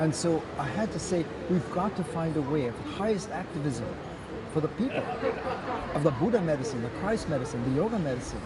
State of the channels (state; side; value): identical; both; correlation 1.00